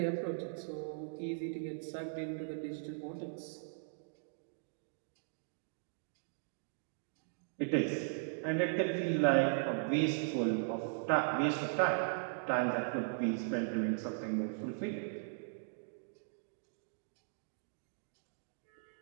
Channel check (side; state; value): left; silent; digital silence